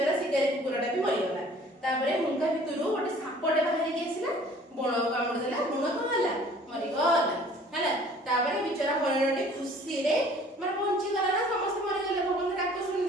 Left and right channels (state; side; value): normal; both; correlation 0.52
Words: ଶିକାରୀ କୁକୁରଟା ବି ମରିଗଲା। ତାପରେ ହୁଙ୍କା ଭିତରୁ ଗୋଟେ ସାପଟେ ବାହାରିକି ଆସିଲା, ବଣକୁ କାମୁଡ଼ି ଦେଲା। ବଣ କଣ ହେଲା, ମରିଗଲା। ହେଲା, ତାପରେ ବିଚରା ହରିଣଟି ଖୁସିରେ ମାନେ ବଞ୍ଚିଗଲା ନା, ସମସ୍ତେ ମରିଗଲେ, ଭଗବାନ ଡାକ